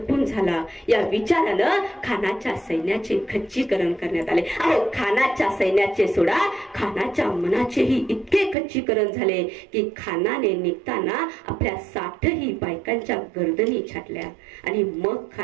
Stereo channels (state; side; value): drops out; left; at 8.6 s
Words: झाला या विचारानं खानाच्या सैन्याचे खच्चीकरण करण्यात आले. अहो, खानाच्या सैन्याचे सोडा, खानाच्या मनाचेही इतके खच्चीकरण झाले की खानाने निघताना आपल्या 60ही बायकांच्या गर्दनी छाटल्या आणि मग